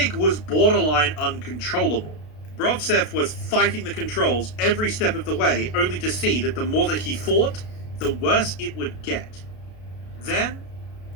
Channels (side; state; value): right; late; 33 ms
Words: was borderline uncontrollable. Brovtsev was fighting the controls every step of the way, only to see that the more that he fought, the worse it would get. Then,